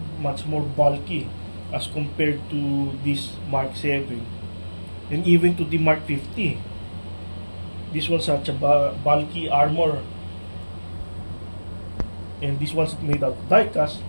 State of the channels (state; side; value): inverted; both; correlation -1.00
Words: much more bulky as compared to this Mark 7 and even to the Mark 50. This one's such a bulky armor, and this one's made out of diecast.